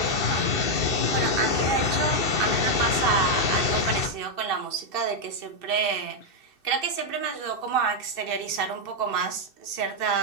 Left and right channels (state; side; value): late; right; 2.6 ms